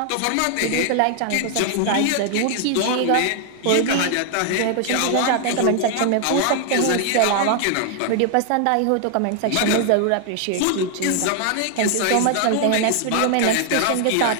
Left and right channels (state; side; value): different; both; correlation 0.00